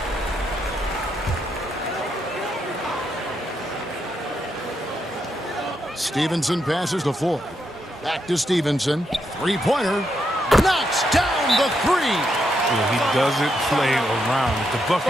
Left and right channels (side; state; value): both; normal; correlation 0.81